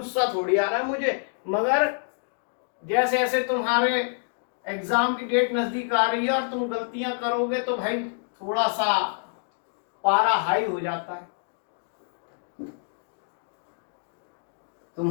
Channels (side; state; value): right; silent; digital silence